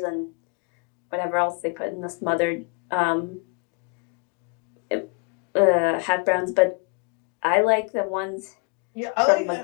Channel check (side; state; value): right; quieter; 33.5 dB